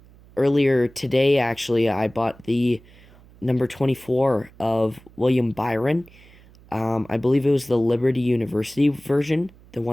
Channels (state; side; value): noise; right; hum, 25 dB below the sound